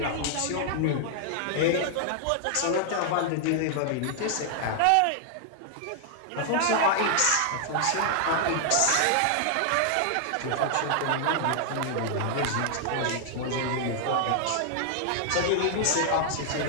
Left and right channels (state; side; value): different; both; correlation -0.01